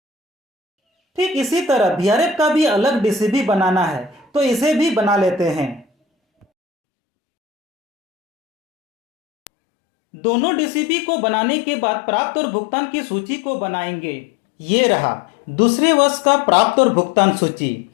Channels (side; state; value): right; drops out; at 6.5 s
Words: ठीक इसी तरह वीआरएफ का भी अलग डीसीबी बनाना है, तो इसे भी बना लेते हैं। दोनों डीसीबी को बनाने के बाद प्राप्त और भुगतान की सूची को बनाएंगे। ये रहा दूसरे वर्ष का प्राप्त और भुगतान सूची।